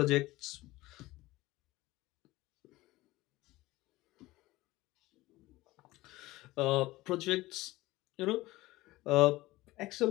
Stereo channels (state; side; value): quieter; right; 18.8 dB